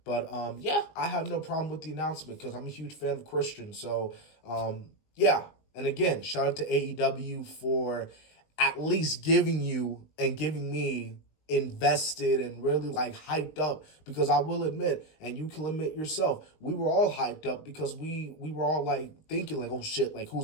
But, I have no problem with the announcement because I'm a huge fan of Christian. So, yeah. And again, shout out to AEW for at least giving you and giving me invested and really hyped up, because I will admit, and you can admit yourself, we were all hyped up because we were all thinking oh shit,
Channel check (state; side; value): late; right; 20 ms